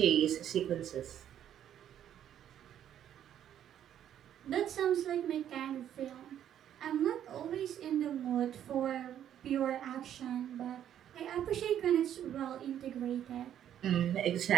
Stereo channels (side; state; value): left; quieter; 10.4 dB